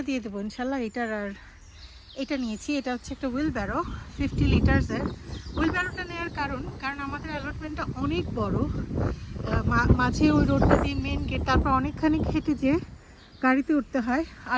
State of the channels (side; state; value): both; identical; correlation 1.00